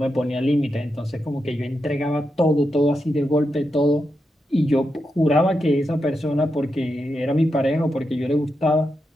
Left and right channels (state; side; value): normal; both; correlation 0.86